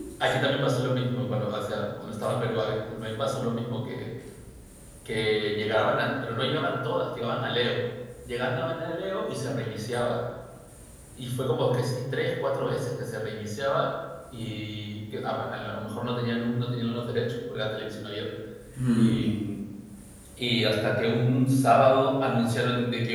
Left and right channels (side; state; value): both; identical; correlation 1.00